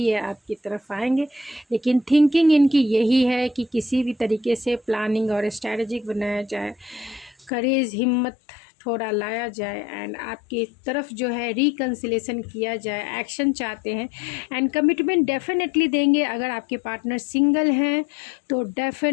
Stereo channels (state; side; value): drops out; right; at 7.5 s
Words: आपकी तरफ आएंगे, लेकिन थिंकिंग इनकी यही है कि किसी भी तरीके से प्लानिंग और स्ट्रैटेजिक बनाया जाए, करेज हिम्मत थोड़ा लाया जाए, एंड आपकी तरफ जो है रिकन्सिलेशन किया जाए, एक्शन चाहते हैं, एंड कमिटमेंट डेफिनेटली देंगे। अगर आपके पार्टनर सिंगल हैं तो